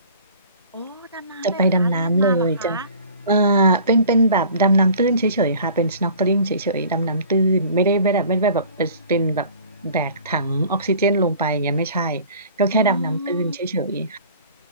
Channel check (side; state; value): both; inverted; correlation -0.47